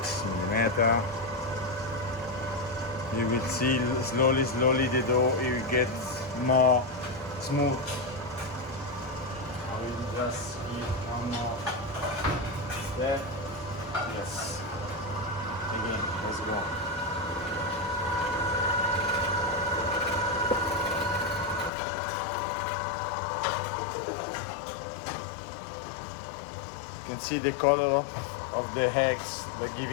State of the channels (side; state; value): right; drops out; at 21.7 s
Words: mm. You will see slowly the dough will get more smooth. I will just give one more step. Yes. Again, let's go. You can see the color of the eggs. They're